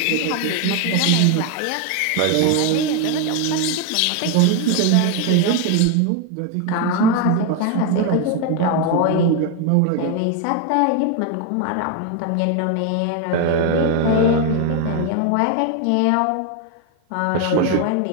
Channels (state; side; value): different; both; correlation 0.01